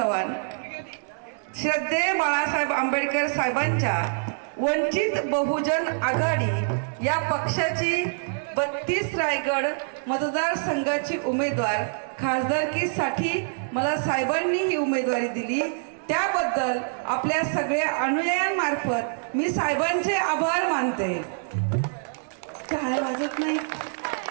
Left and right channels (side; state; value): left; silent; digital silence